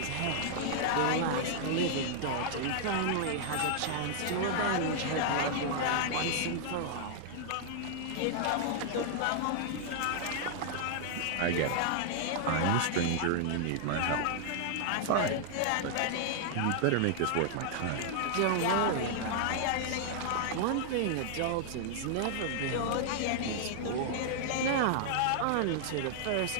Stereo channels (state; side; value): different; both; correlation -0.01